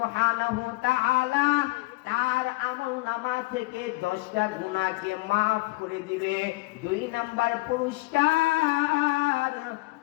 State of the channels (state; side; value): quieter; right; 22.7 dB